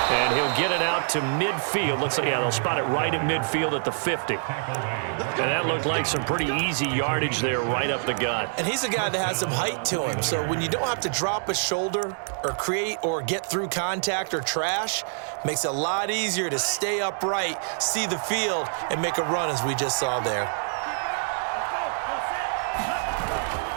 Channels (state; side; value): silent; left; digital silence